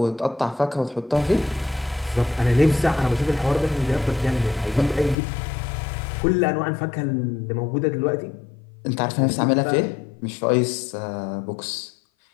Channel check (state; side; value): drops out; right; at 5.2 s